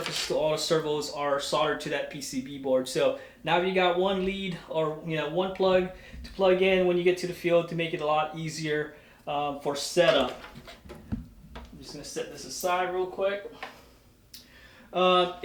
to all the servos are soldered to that PCB board. So now you got one lead, or one plug to plug in when you get to the field to make it a lot easier for setup. I'm just gonna set this aside real quick.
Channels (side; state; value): both; identical; correlation 1.00